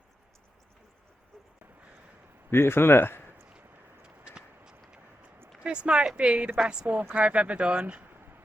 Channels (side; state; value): both; normal; correlation 0.87